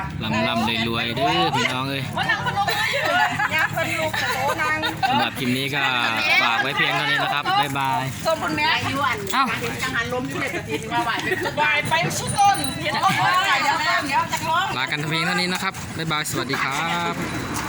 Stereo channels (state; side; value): identical; both; correlation 1.00